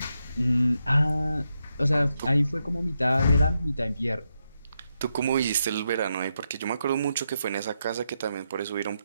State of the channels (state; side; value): inverted; both; correlation -0.84